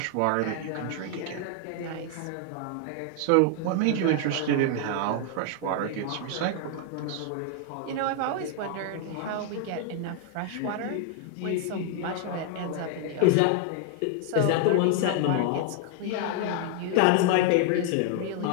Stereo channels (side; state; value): both; different; correlation 0.00